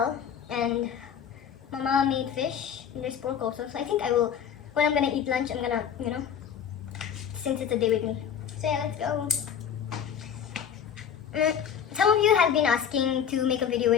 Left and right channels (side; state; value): right; quieter; 8.2 dB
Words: and Mama made fish. And there's pork also. So I think I will, when I'm gonna eat lunch, I'm gonna, since it's a day with me. So yeah, let's go. Some of you have been asking to make a video